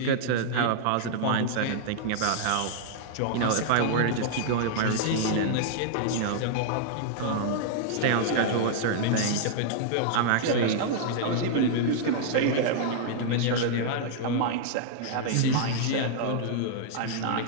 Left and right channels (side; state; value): both; different; correlation -0.01